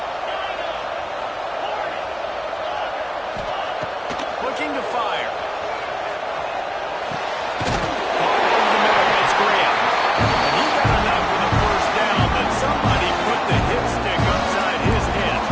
Looking to fire.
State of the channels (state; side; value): identical; both; correlation 1.00